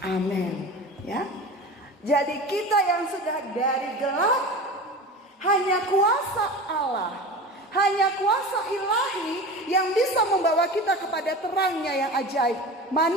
Amin. Ya. Jadi kita yang sudah dari gelap, hanya kuasa Allah, hanya kuasa ilahi yang bisa membawa kita kepada terangnya yang ajaib.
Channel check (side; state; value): both; normal; correlation 0.32